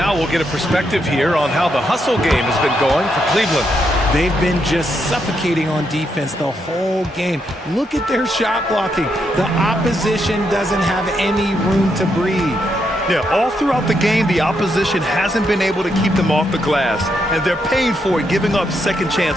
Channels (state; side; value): normal; both; correlation 0.79